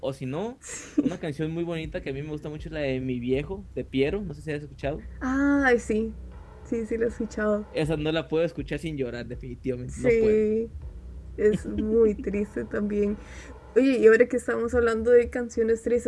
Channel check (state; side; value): identical; both; correlation 1.00